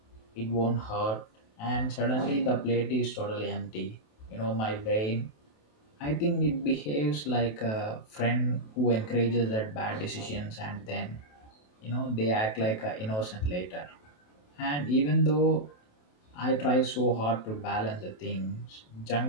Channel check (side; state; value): right; late; 28 ms